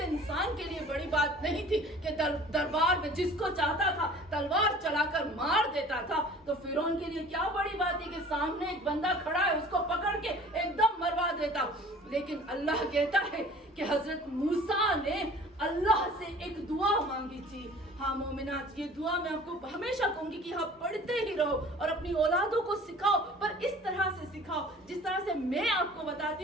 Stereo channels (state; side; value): normal; both; correlation 0.47